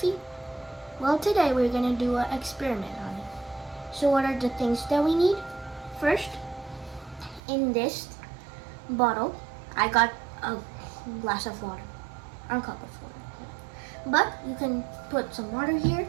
Well, today we're going to do an experiment on it. So what are the things that we need? First, in this bottle, I got a glass of water, or a cup of water. But you can put some water here.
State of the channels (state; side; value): drops out; left; at 7.4 s